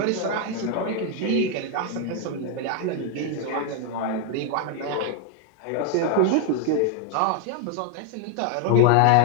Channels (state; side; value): different; both; correlation 0.00